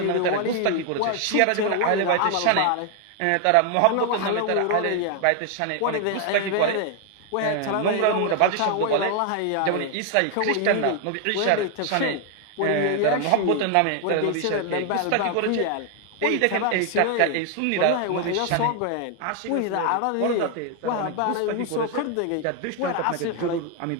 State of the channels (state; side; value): different; both; correlation 0.00